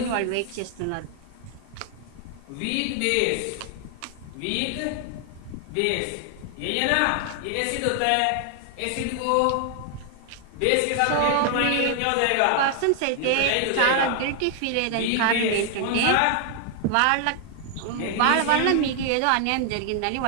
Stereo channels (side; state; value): both; different; correlation 0.00